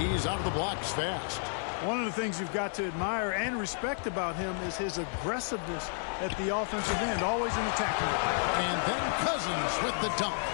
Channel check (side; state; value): right; silent; digital silence